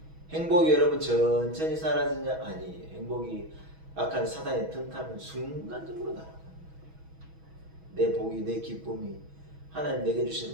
행복이 여러분 천천히 사라지냐? 아니에요. 행복이 악한 사단의 틈타면 순간적으로 날아가는 거예요. 내 복이 내 기쁨이 하나님 내게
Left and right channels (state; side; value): late; left; 6.2 ms